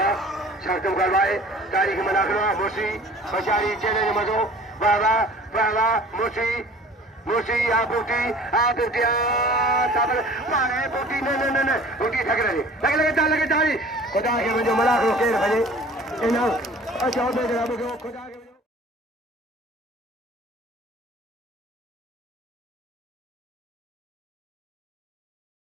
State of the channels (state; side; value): normal; both; correlation 0.47